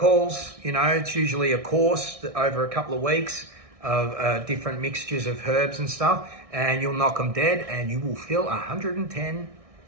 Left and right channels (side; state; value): left; late; 1.6 ms